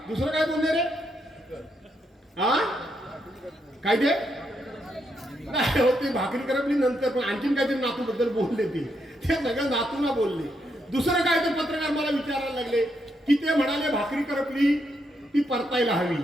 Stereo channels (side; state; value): both; normal; correlation 0.79